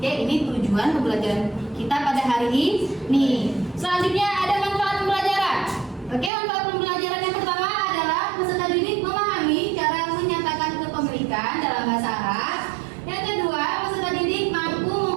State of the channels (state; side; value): drops out; left; at 6.3 s